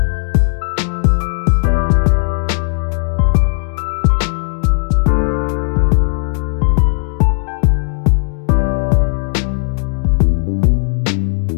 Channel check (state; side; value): silent; right; 62 dB below the other